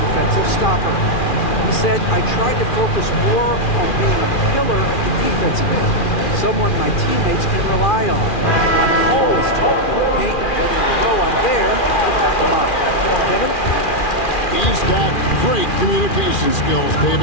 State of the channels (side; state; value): right; late; 2.4 ms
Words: stopper. He said, I tried to focus more on being a pillar at the defensive end, someone my teammates can rely on. I'm always talking to the paint, letting them know I'm there to back them up. Kevin? He's got great communication skills,